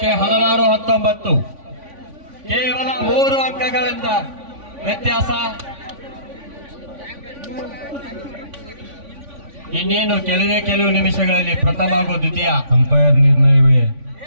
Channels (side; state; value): left; late; 3.5 ms